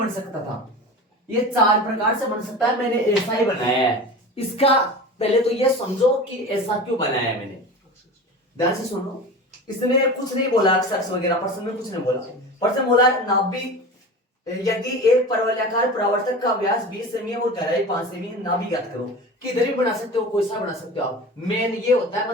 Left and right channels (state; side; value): normal; both; correlation 0.33